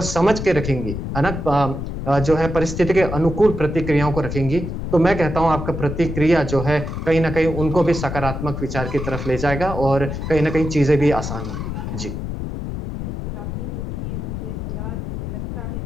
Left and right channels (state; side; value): noise; left; rumble, 5 dB below the sound